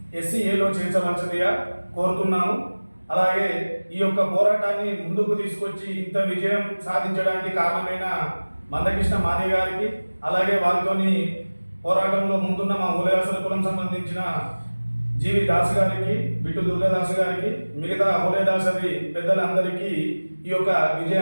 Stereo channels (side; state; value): both; inverted; correlation -1.00